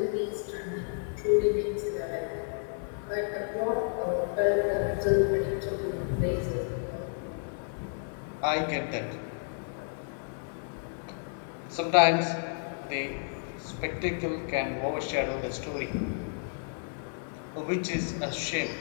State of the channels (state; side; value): silent; right; 57 dB below the other